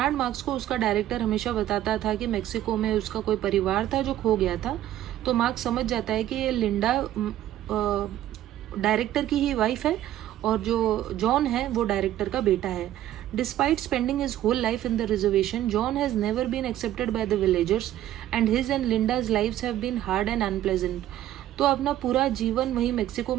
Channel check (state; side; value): quieter; left; 12.8 dB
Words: मार्क्स को उसका डायरेक्टर हमेशा बताता था कि मेक्सिको में उसका कोई परिवार था जो खो गया था. तो मार्क्स समझ जाता है कि ये लिंडा डायरेक्टर की ही वाइफ है और जो जॉन है वो डायरेक्टर का बेटा है. Despite spending his whole life in the reservation, John has never been accepted by the villagers and his and Linda's lives have been hard and unpleasant. तो अपना पूरा जीवन वहीं मेक्सिको